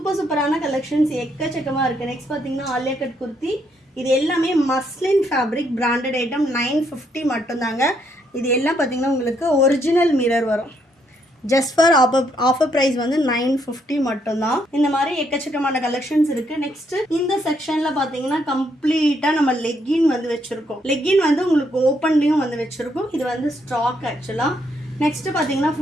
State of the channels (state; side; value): normal; both; correlation 0.73